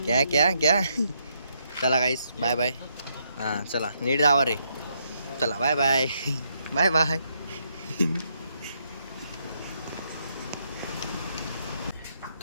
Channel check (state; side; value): inverted; both; correlation -0.76